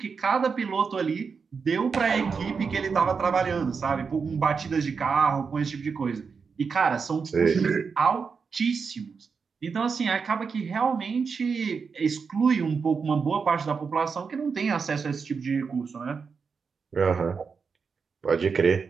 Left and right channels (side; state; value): left; quieter; 5.5 dB